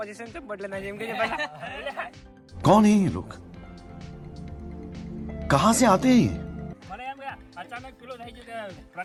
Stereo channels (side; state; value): both; identical; correlation 1.00